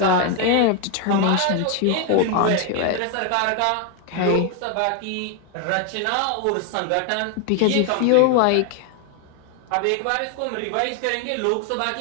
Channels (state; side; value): different; both; correlation 0.01